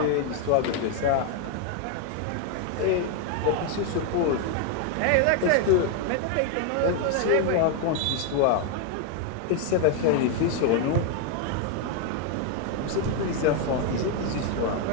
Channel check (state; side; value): different; both; correlation 0.01